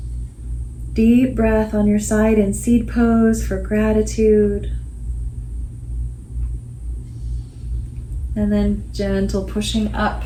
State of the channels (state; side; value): identical; both; correlation 1.00